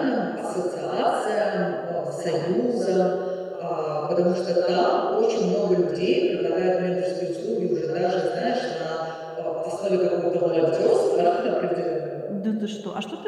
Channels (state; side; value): identical; both; correlation 1.00